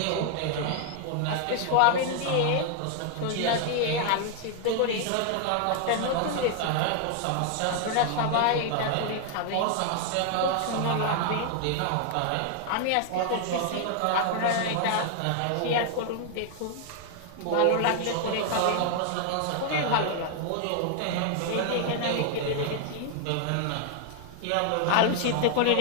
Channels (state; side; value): different; both; correlation 0.00